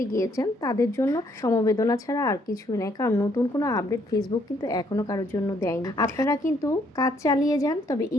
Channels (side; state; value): both; normal; correlation 0.68